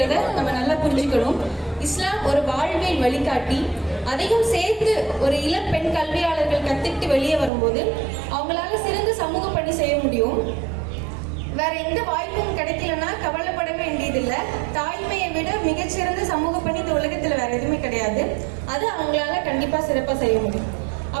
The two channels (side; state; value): left; drops out; at 7.5 s